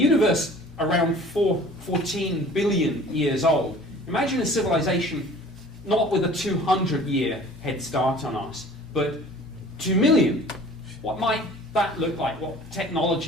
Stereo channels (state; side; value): normal; both; correlation 0.47